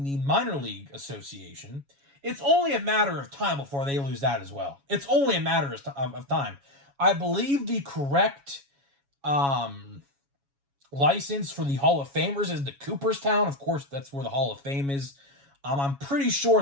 the Minor League Association. It's only a matter of time before they lose that as well. It's only a matter of time. I believe the correct license for the Hall of Famers is the Cooperstown. Of course, that's where the Hall of Fame is. I'm pretty sure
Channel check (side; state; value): left; late; 7.2 ms